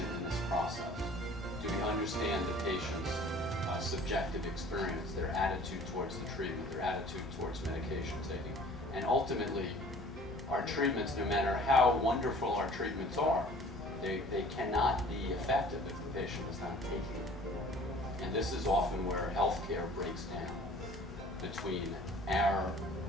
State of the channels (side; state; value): both; normal; correlation 0.50